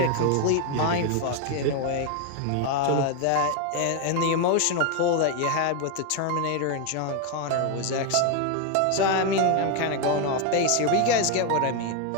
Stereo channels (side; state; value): both; different; correlation 0.01